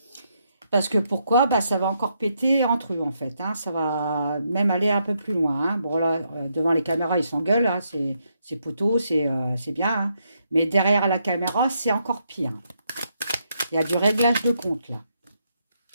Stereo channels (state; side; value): inverted; both; correlation -0.78